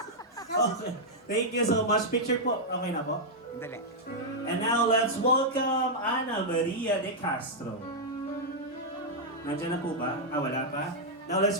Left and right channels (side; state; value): both; normal; correlation -0.05